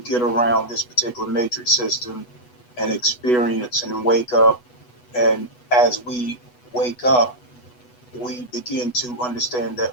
get around this particular matrix system and experience and wake up. And as we wake up, we begin to understand that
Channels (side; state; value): right; late; 8.1 ms